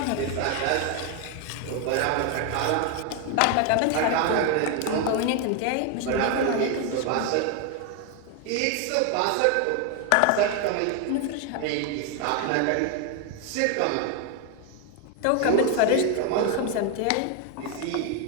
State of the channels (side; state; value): both; different; correlation 0.01